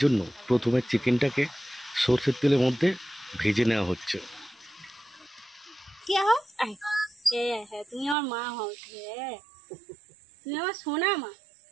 জন্য প্রথমে চিকেনটাকে সরষের তেলের মধ্যে ভেজে নেওয়া হচ্ছে। কে হও? হ্যাঁ, তুমি আমার মা হও। হ্যাঁ, তুমি আমার সোনা মা।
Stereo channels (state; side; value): drops out; left; at 8.2 s